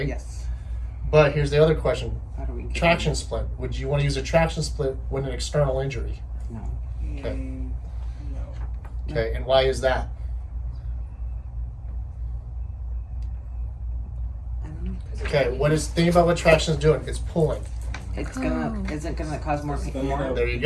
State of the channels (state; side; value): identical; both; correlation 1.00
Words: Yes. But here's the other question. How do we get Traction split. Would you want to use a traction split with an external injury? No. Okay. No. Okay, and why is that? I don't know. Okay, think about what traction is doing. It's pulling. It's gonna. Is it gonna cause more pain? More? There you It's